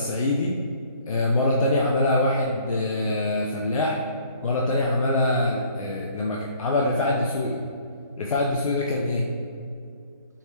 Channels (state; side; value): inverted; both; correlation -0.57